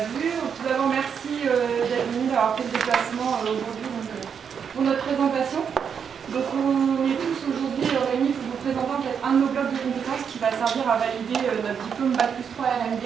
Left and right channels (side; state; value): left; quieter; 7.1 dB